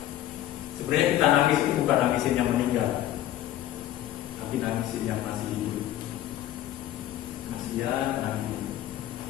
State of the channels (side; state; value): right; quieter; 13.0 dB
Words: Sebenarnya kita nangis itu bukan nangisin yang meninggal, tapi nangisin yang masih hidup. Masih ya nangis.